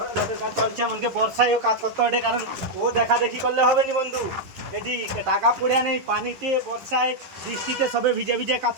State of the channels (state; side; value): late; left; 11 ms